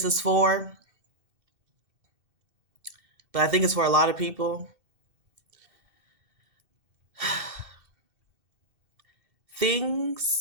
is for, but I think it's for a lot of people.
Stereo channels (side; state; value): left; late; 2.6 ms